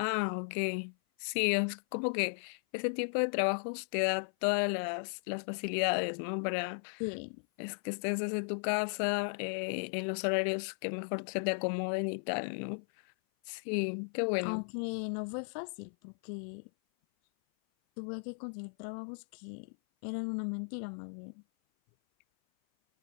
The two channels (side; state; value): right; silent; 54 dB below the other